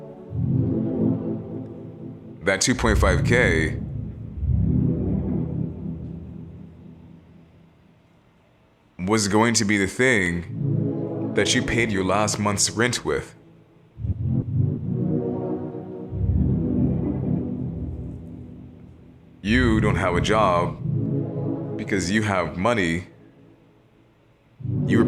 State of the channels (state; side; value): identical; both; correlation 1.00